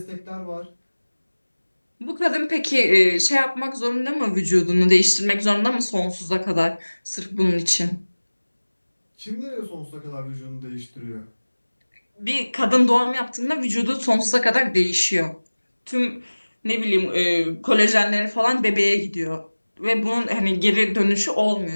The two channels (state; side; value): inverted; both; correlation -1.00